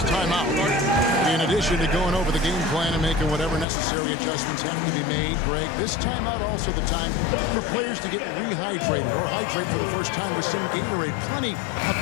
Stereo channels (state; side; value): drops out; right; at 3.7 s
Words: timeout. In addition to going over the game plan and making whatever necessary adjustments have to be made, Greg, this timeout also the time for players to get rehydrated or hydrate for the first time with some Gatorade. Plenty of